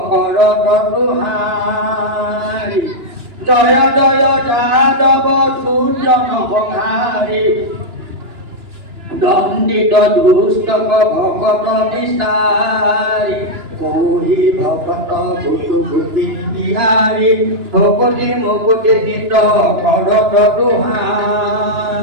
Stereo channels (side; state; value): left; late; 2.9 ms